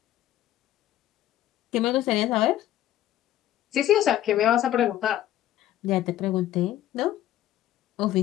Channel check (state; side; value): quieter; right; 13.1 dB